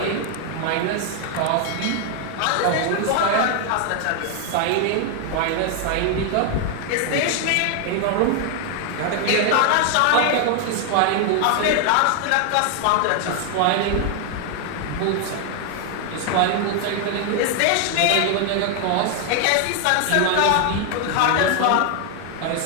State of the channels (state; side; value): different; both; correlation 0.00